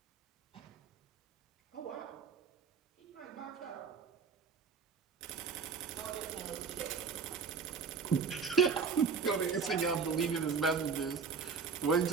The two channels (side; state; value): left; quieter; 5.7 dB